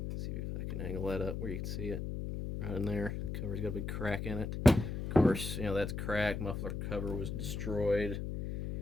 Let's see if I can angle that up where you can see it. Right in there, the cover's got a big crack in it. Of course, that's cracked. Muffler cover was destroyed.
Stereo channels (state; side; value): noise; left; hum, 4 dB below the sound